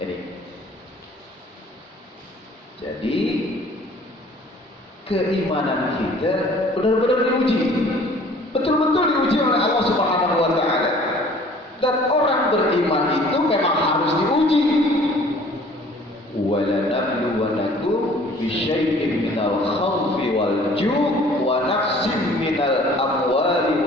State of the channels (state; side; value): normal; both; correlation 0.52